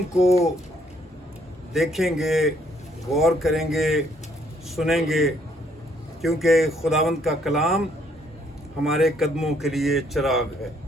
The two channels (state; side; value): normal; both; correlation 0.67